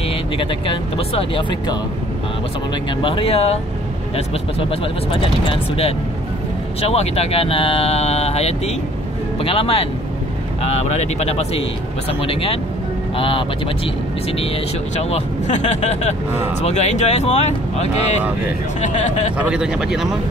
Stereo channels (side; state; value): both; normal; correlation 0.55